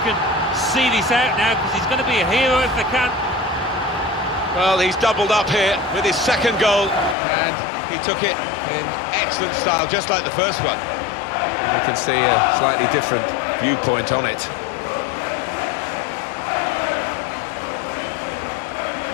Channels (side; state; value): right; drops out; at 7.2 s